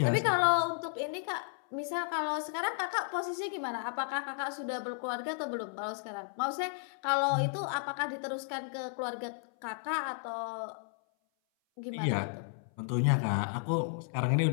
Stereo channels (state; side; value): silent; right; 55 dB below the other